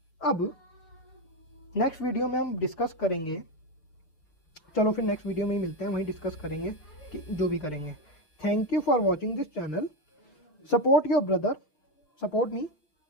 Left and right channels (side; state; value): right; late; 6.6 ms